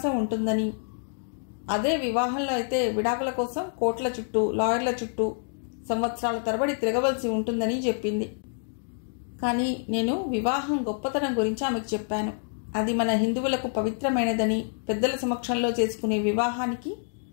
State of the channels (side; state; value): right; silent; 60 dB below the other